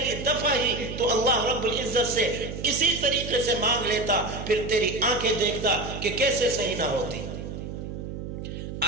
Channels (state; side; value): noise; right; hum, 8 dB below the sound